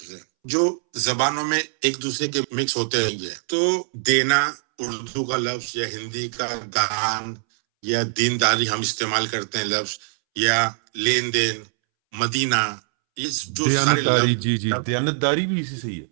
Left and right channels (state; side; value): silent; left; 63 dB below the other